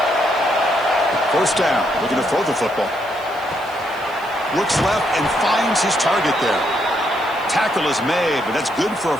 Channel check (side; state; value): right; noise; hiss, 24 dB below the sound